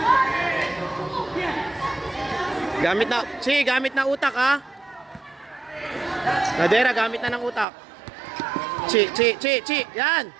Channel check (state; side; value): drops out; left; at 7.7 s